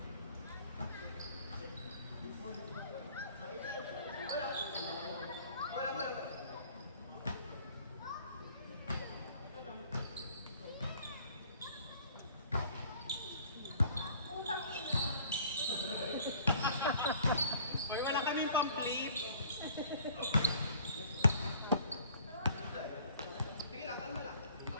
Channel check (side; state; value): both; inverted; correlation -0.54